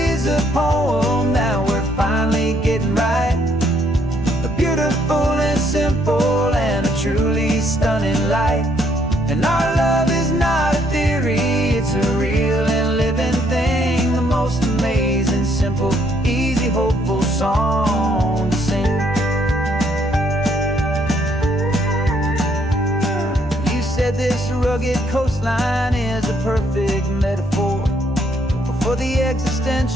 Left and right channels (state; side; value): normal; both; correlation 0.69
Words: is a poem that we're finally getting right, a beautiful and simple and a truly stunning light. And our love is not a theory, it's a real and living thing, the most amazing, simple, easy, hopeful song to sing. You said this rugged coastline is a perfect metaphor for the